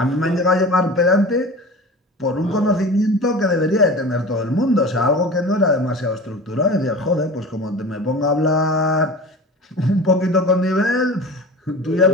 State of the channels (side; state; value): both; normal; correlation 0.36